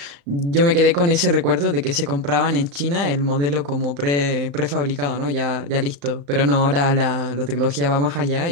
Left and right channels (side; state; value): left; late; 35 ms